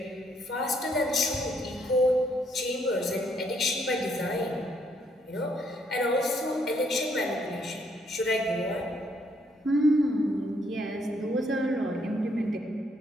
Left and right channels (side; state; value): both; normal; correlation 0.71